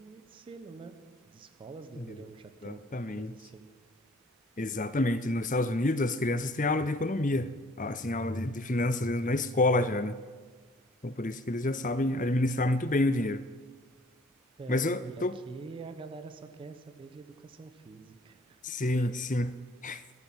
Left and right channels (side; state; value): both; normal; correlation 0.56